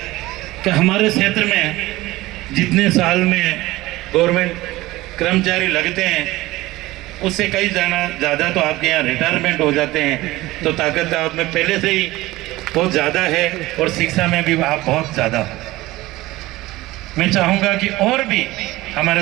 कि हमारे क्षेत्र में जितने साल में गवर्नमेंट कर्मचारी लगते हैं उससे कई ज़्यादा तो आपके यहाँ रिटायरमेंट हो जाते हैं। तो ताकत आप में पहले से ही बहुत ज़्यादा है और शिक्षा में भी आप बहुत ज़्यादा हो। मैं चाहूँगा कि और भी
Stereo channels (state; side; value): quieter; left; 18.5 dB